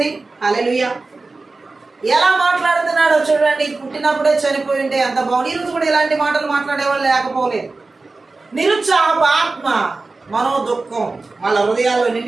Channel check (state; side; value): quieter; left; 3.6 dB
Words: హల్లెలూయా. ఎలా మాట్లాడుతున్నాడో చూడండి. పుట్టినప్పుడే చనిపోయి ఉంటే అంత బాగుంది. ఈరోజు కూడా ఇలాంటి మాటలు మాట్లాడేవాళ్ళు లేకపోలేదు. నిరుత్సాహపు ఆత్మ, మనోదుఖం వాళ్ళ హృదయాల్లో